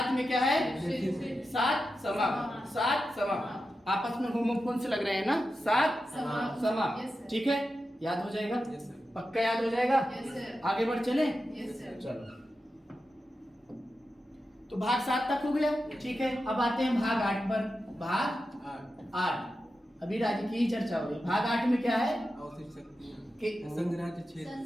में क्या है? 7 समाप्त, 7 समाप्त। आपस में होमोफोन से लग रहे हैं ना, 7 समाप्त, ठीक है। याद हो जाएगा? पक्का याद हो जाएगा? आगे बढ़ चले? चलो, तो भाग 7 तक हो गया, ठीक है। अब आते हैं भाग 8 पर। भाग 8 अभी राज्य की ही चर्चा हो रही। भाग 8 में क्या है?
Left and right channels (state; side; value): normal; both; correlation 0.91